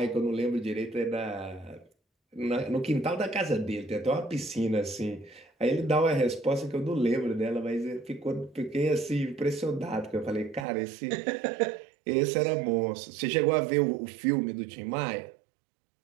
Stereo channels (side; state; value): left; drops out; at 10.7 s